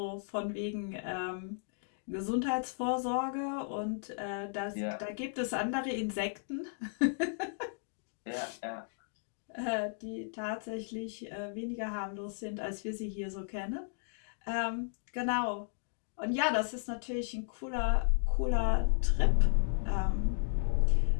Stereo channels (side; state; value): right; silent; digital silence